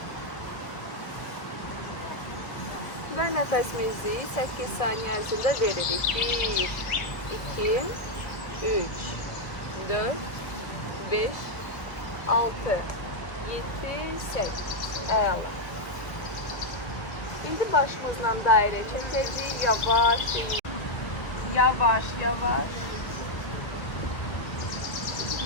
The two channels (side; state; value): right; late; 1.2 ms